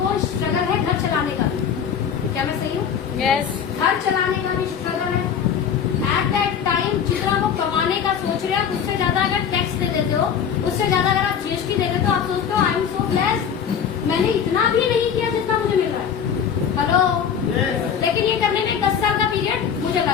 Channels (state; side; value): quieter; right; 7.8 dB